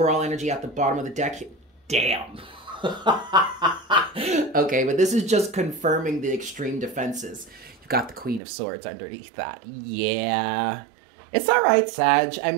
energy at the bottom of the deck. Damn. Okay, but this is just confirming the extreme defenses. You've got the Queen of Swords underneath that. Yeah. It's all right, Sag. I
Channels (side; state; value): left; drops out; at 8.4 s